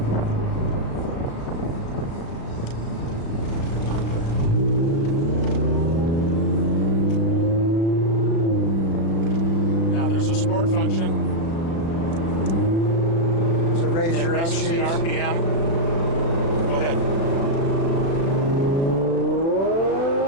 Now there's a sport function. So raise your up Raises the shifts. RPM. Go ahead.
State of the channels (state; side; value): late; right; 36 ms